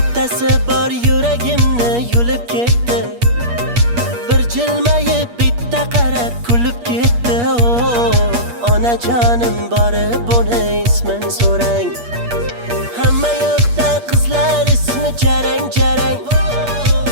bor yuragimni yulib ketdi. Bir jilmayib bitta qarab kulib ketdi. Onajonim borib uni ismin so'rang. Hamma yoqda qizlar ismi jarang-jarang.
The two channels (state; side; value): late; left; 8.4 ms